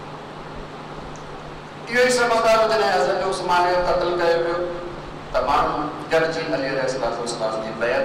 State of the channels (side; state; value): both; identical; correlation 1.00